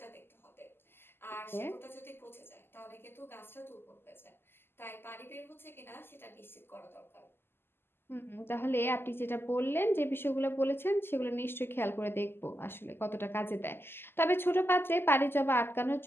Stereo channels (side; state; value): right; late; 0.11 ms